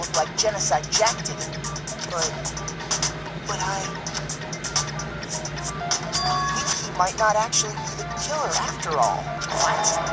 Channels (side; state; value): both; identical; correlation 1.00